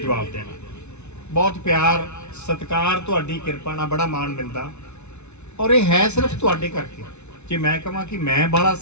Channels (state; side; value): late; right; 0.82 ms